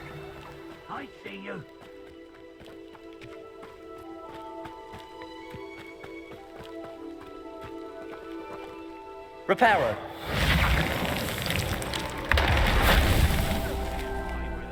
I see you. Reparo.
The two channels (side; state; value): both; identical; correlation 1.00